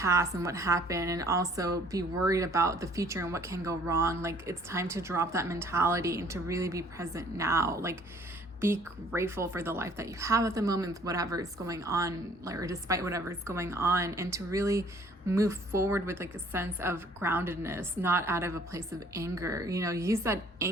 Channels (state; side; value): normal; both; correlation 0.57